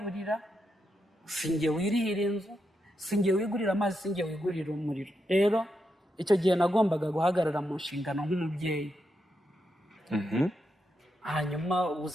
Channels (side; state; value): both; normal; correlation 0.84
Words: sinjye wirihira inzu, sinjye wigurira amazi, sinjye wigurira umuriro. Rero icyo gihe nagombaga guhagarara mu nshingano nk'umubyeyi. Hanyuma